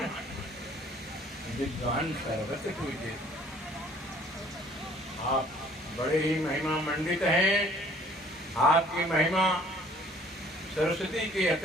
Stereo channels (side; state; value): both; normal; correlation 0.56